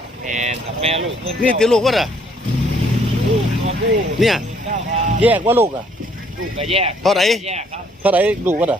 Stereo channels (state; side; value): normal; both; correlation 0.64